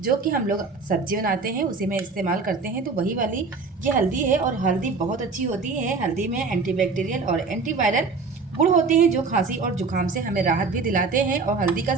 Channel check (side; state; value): left; quieter; 4.3 dB